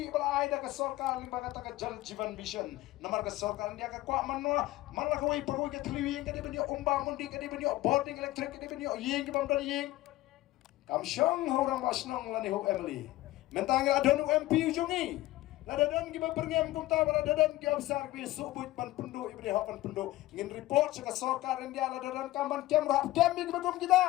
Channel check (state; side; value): quieter; right; 17.1 dB